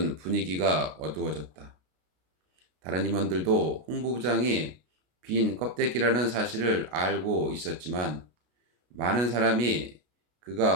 분위기가 어두워졌다. 다른 임원들도 홍보부장이 빈 껍데기라는 사실을 알고 있었지만 많은 사람이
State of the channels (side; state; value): left; late; 33 ms